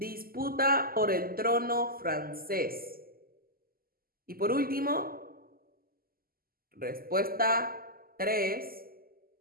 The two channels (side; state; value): left; late; 0.42 ms